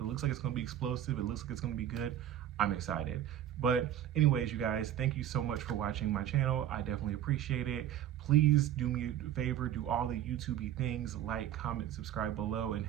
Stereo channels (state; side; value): quieter; left; 11.2 dB